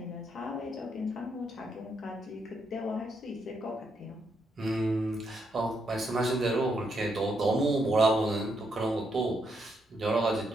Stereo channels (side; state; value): both; normal; correlation 0.78